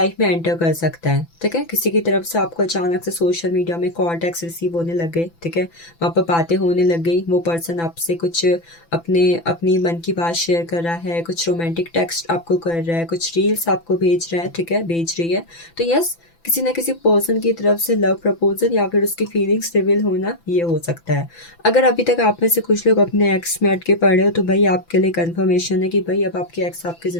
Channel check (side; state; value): right; late; 6.0 ms